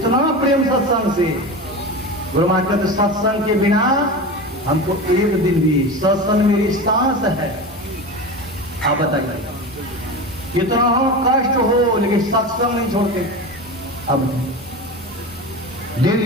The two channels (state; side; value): normal; both; correlation 0.26